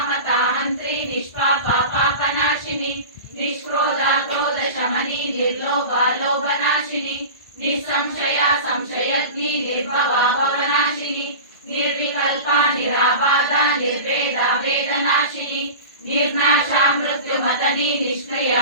నిష్పాప పాపనాశిని నిష్క్రోధ క్రోధ శమని నిర్లోభ లోభనాశిని నిస్సంశయ సంశయగ్ని నిర్భవ భవనాశిని నిర్వికల్ప నిరాబాధ నిర్వేద వేదనాశిని నిర్నాశ మృత్యుమతని నిష్క్రియ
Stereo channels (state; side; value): inverted; both; correlation -0.32